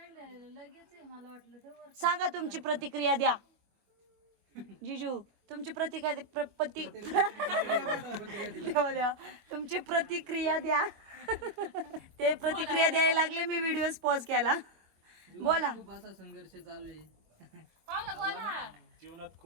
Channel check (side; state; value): left; late; 24 ms